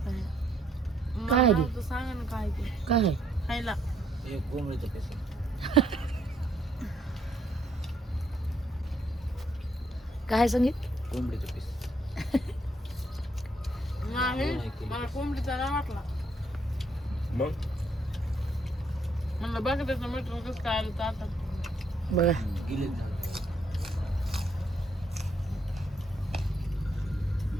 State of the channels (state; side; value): normal; both; correlation 0.71